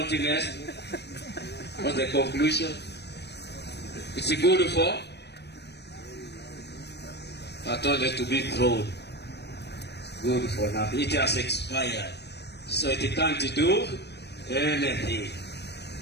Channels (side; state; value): right; late; 0.49 ms